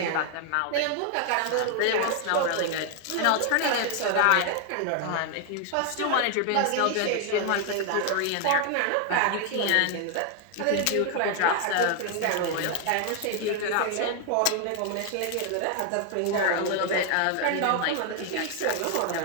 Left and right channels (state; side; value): different; both; correlation 0.00